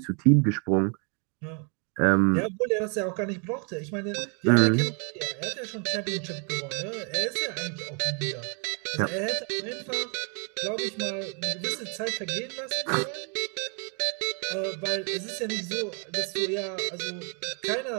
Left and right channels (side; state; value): left; quieter; 37.2 dB